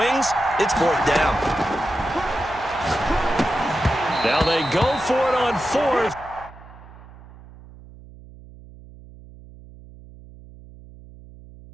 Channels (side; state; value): right; noise; hum, 20 dB below the sound